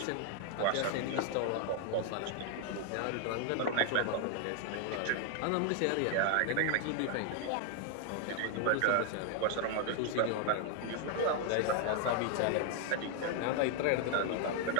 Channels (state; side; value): different; both; correlation 0.00